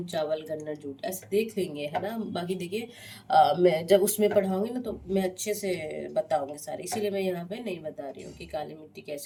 चावल, गन्ना, जूट, ऐसे देख लेंगे, है ना। बाकी देखिए मैं जब उसमें पढ़ाऊंगी ना तो मैं अच्छे से बताऊंगी सारे, इसीलिए मैं यहाँ पे नहीं बता रही हूँ कि काली मिट्टी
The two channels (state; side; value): identical; both; correlation 1.00